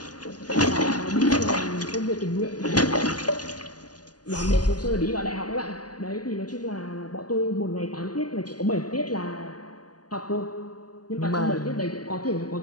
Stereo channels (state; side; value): late; right; 0.69 ms